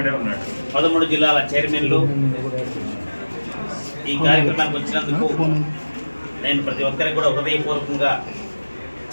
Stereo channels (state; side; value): inverted; both; correlation -1.00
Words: 13 జిల్లాల చైర్మన్లు ఈ కార్యక్రమానికి వచ్చినందుకు నేను ప్రతి ఒక్కరికి కూడా హృదయపూర్వకంగా